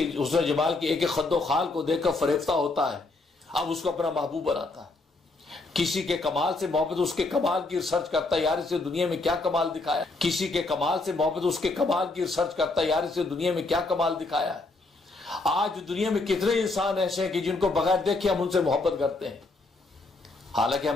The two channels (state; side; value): quieter; right; 3.3 dB